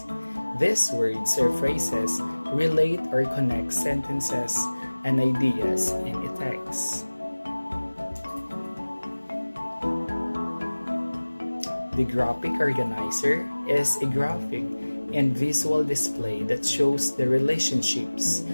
These words or phrases relate or connect sentences and ideas in a text. The graphic organizer is a graphic and visual display that shows the relationships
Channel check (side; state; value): both; inverted; correlation -1.00